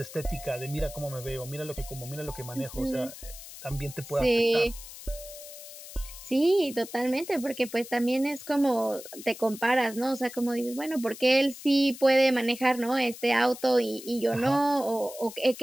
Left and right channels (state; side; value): noise; left; hiss, 14 dB below the sound